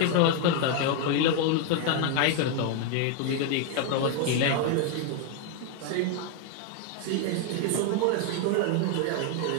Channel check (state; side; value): different; both; correlation 0.00